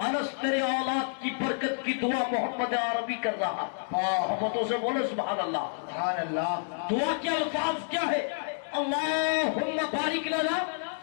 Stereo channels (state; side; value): silent; right; digital silence